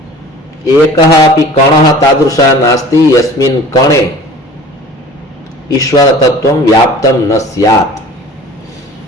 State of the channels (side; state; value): both; normal; correlation 0.44